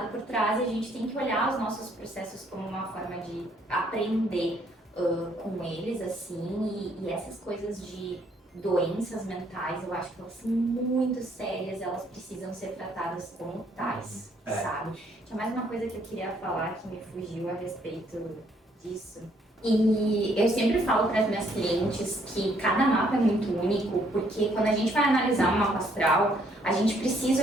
por trás e a gente tem que olhar os nossos processos como uma forma de aprender com eles, assim, e essas coisas de doenças mentais, eu acho que elas são muito sérias, elas precisam ser tratadas como tais, sabe? Tinha mais uma coisa que eu queria falar que me fugiu a respeito disso. E eu sempre falo para as minhas clientes que cada mapa é muito único, porque quando a gente vai analisar um mapa astral, a gente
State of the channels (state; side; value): normal; both; correlation 0.67